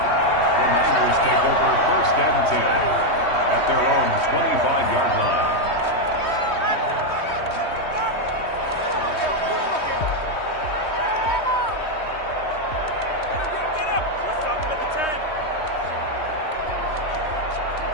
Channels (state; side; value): late; right; 3.2 ms